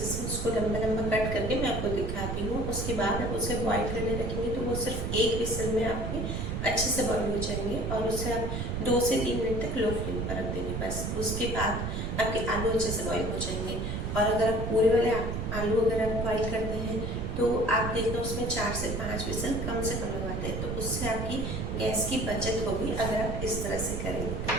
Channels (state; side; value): noise; right; rumble, 3 dB below the sound